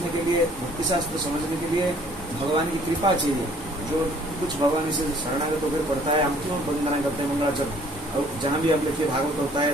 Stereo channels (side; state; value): both; normal; correlation 0.58